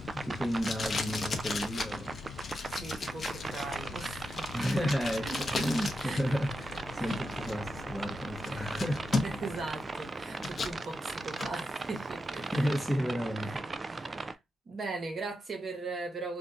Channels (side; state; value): both; normal; correlation 0.88